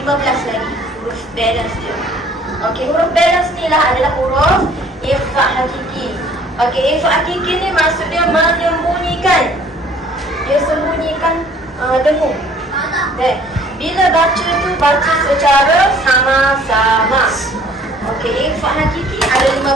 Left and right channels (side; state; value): both; normal; correlation 0.55